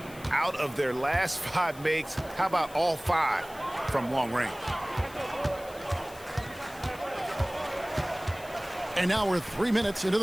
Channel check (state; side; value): noise; left; hiss, 20 dB below the sound